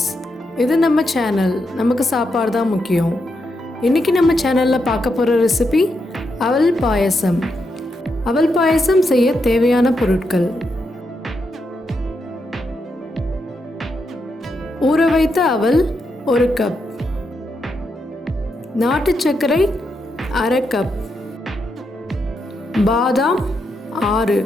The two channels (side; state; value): both; normal; correlation 0.83